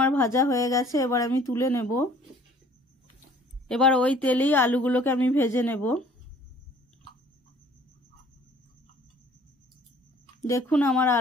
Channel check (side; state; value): both; normal; correlation 0.54